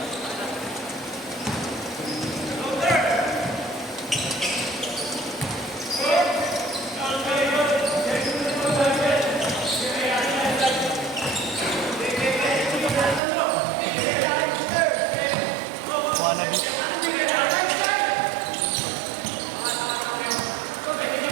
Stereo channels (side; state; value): left; drops out; at 13.2 s